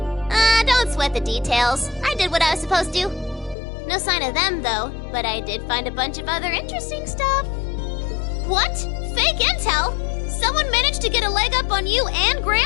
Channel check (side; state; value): right; drops out; at 3.6 s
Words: Don't sweat the details. I did what I was supposed to. No sign of them, though, but I did find a bunch of other interesting stuff. What? Fake intel? Someone managed to get a leg up on you and